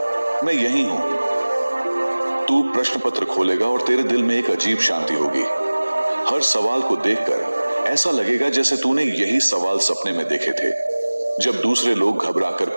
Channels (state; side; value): inverted; both; correlation -1.00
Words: मैं यही हूं। तू प्रश्न पत्र खोलेगा और तेरे दिल में एक अजीब शांति होगी। हर सवाल को देखकर ऐसा लगेगा जैसे तूने यही सवाल सपने में देखे थे। जब दूसरे लोग घबराकर